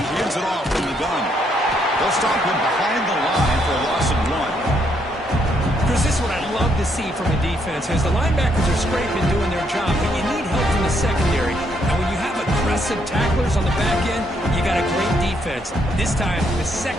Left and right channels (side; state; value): both; normal; correlation 0.73